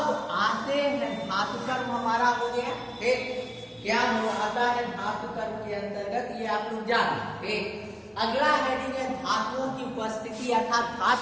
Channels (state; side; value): identical; both; correlation 1.00